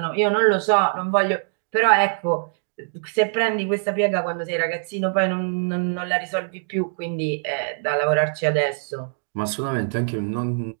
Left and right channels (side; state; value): left; silent; digital silence